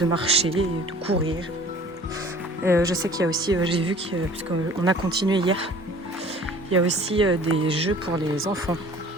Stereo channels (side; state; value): both; normal; correlation 0.49